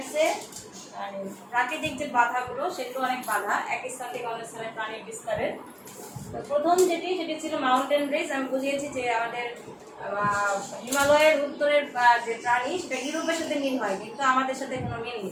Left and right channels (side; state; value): both; identical; correlation 1.00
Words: প্রাকৃতিক যে বাধাগুলো সেগুলো অনেক বাধা এক স্থান থেকে অন্য স্থানে প্রাণীর বিস্তারের। তো প্রথম সেটি ছিল মাউন্টেন রেঞ্জ। আমি বুঝিয়েছি যে আমাদের হিমালয়ের উত্তরের যে প্রাণী সেটা ইউরোপের সাথে মিল হয়, কিন্তু আমাদের সাথে কোনো মিল